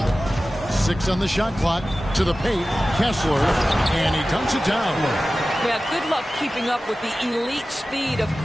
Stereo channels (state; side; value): normal; both; correlation 0.95